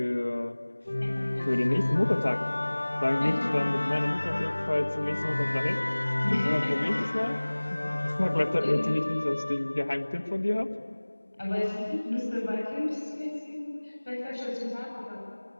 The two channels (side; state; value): both; inverted; correlation -1.00